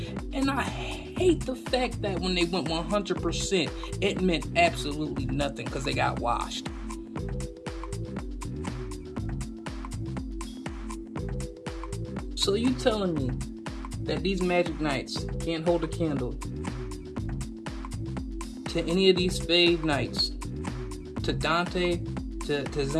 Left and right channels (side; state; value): both; identical; correlation 1.00